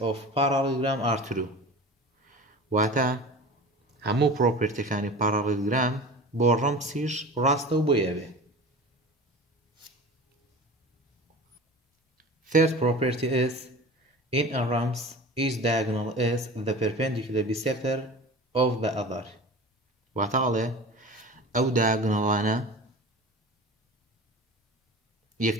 of parallelogram are true. واتا همو property كاني parallelogram بو رمسيش راسته بو يابه. Third property is in a rhombs each diagonal is the perpendicular bisector of the other. واتا عليه او diagonalaنا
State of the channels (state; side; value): normal; both; correlation 0.36